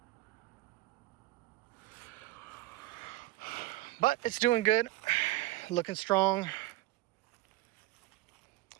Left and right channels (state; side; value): quieter; left; 18.4 dB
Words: But it's doing good, looking strong.